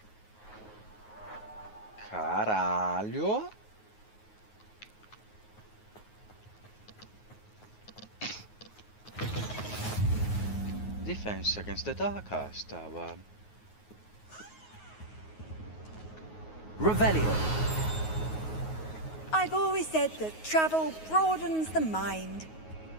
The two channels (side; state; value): right; late; 9.4 ms